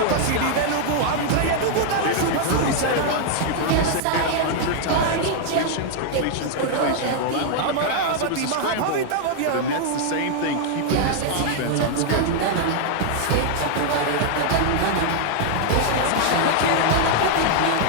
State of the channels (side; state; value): both; different; correlation 0.00